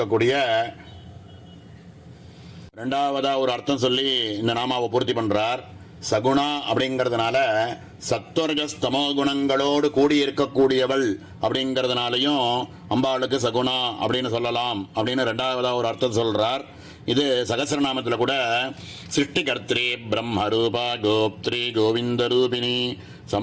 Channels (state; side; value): identical; both; correlation 1.00